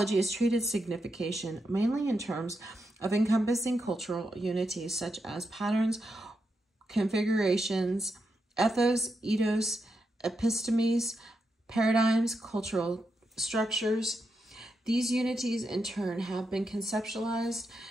has treated signification mainly in terms of encompassing cultural unities such as patterns, configurations, ethos, epistemes, paradigms, cultural structures. These unities, in turn, have been conceptualized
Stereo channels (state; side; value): normal; both; correlation 0.85